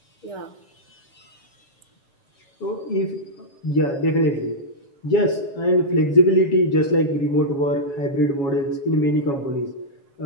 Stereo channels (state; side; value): late; right; 7.2 ms